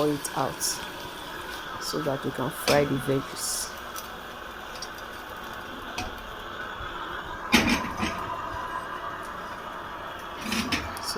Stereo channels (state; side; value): identical; both; correlation 1.00